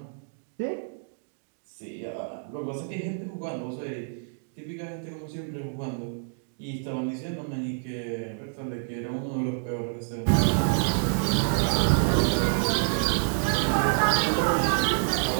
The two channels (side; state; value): left; silent; digital silence